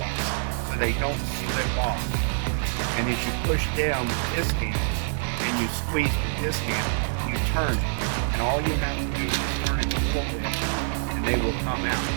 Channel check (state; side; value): silent; left; digital silence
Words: so they don't slip off. And as you push down with this hand and you squeeze with this hand, you turn it. And all you have to do is turn it a little bit and they will come out.